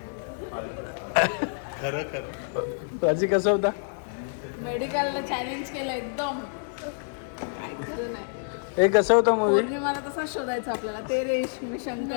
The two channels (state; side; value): silent; right; 60 dB below the other